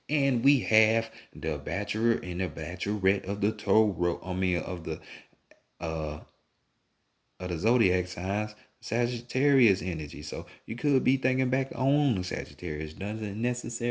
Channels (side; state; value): both; identical; correlation 1.00